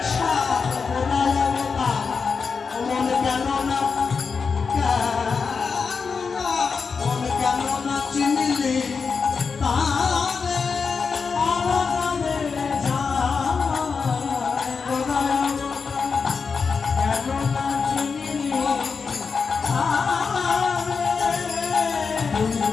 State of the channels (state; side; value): quieter; right; 5.3 dB